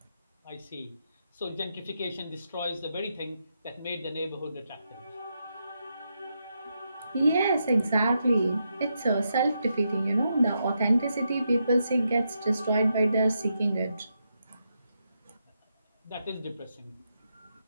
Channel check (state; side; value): inverted; both; correlation -0.83